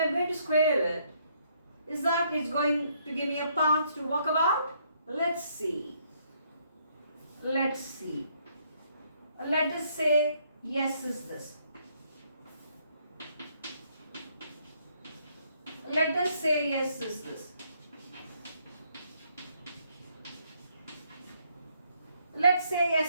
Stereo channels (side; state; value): both; inverted; correlation -0.70